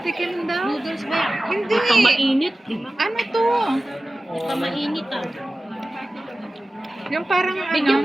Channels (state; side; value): normal; both; correlation 0.96